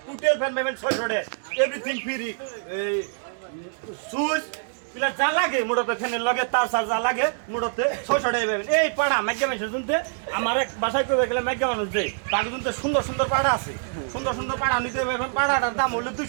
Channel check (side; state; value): left; silent; digital silence